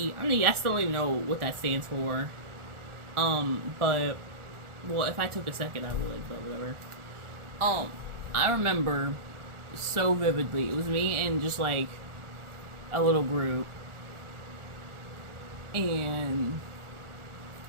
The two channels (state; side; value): late; left; 1.4 ms